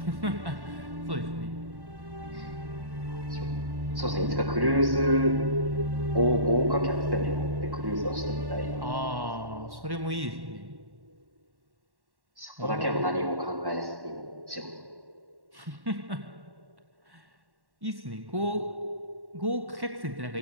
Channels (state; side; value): late; left; 1.1 ms